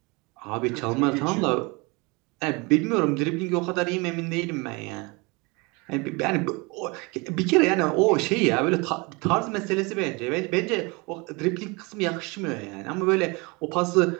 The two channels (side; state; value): left; quieter; 27.3 dB